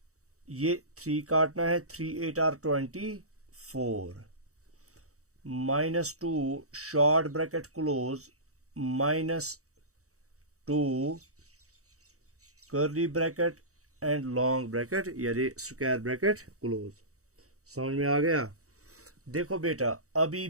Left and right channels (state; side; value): late; left; 0.65 ms